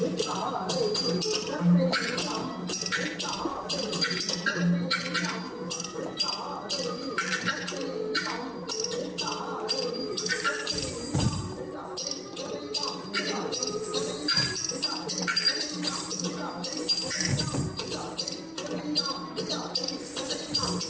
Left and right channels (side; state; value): both; identical; correlation 1.00